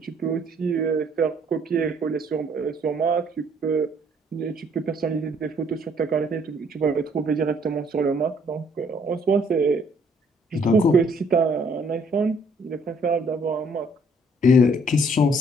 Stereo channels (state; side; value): normal; both; correlation 0.63